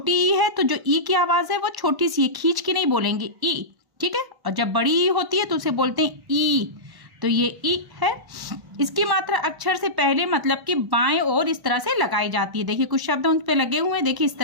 ई है तो जो ई की आवाज है वो छोटी सी है, खींच के नहीं बोलेंगे ई। ठीक है, और जब बड़ी ई होती है तो उसे बोलते हैं ई। तो ये ई है। इसकी मात्रा अक्षर से पहले मतलब कि बाएं ओर इस तरह से लगाई जाती है। देखिए कुछ शब्द उन पे लगे हुए हैं, देखिए इस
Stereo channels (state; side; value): late; left; 1.1 ms